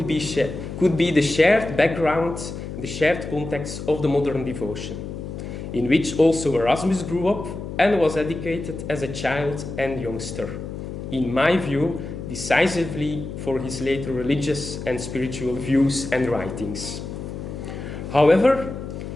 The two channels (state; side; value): noise; left; hum, 8 dB below the sound